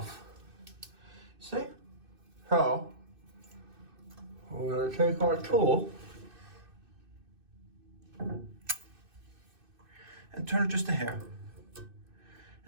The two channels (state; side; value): late; left; 2.6 ms